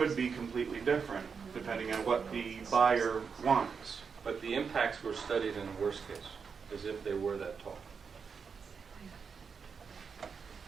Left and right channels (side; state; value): left; quieter; 5.9 dB